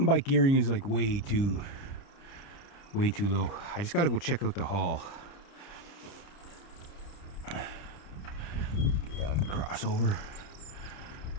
bike gearing is like way too low. I just got to go check out the hall. Get on the crossover.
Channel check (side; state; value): right; late; 29 ms